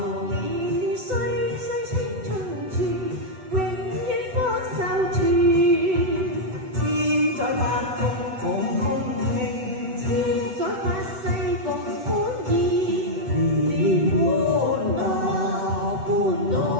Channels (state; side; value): late; left; 7.9 ms